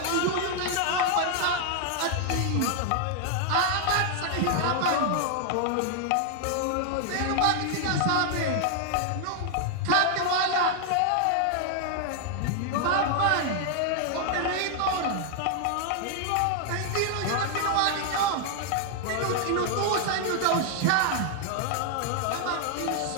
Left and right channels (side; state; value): both; different; correlation 0.00